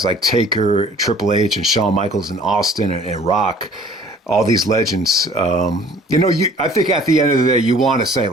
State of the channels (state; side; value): normal; both; correlation 0.52